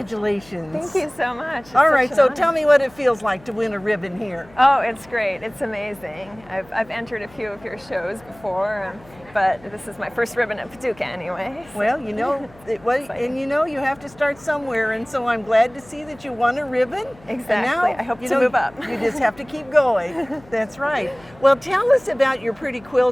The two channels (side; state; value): left; noise; hum, 25 dB below the sound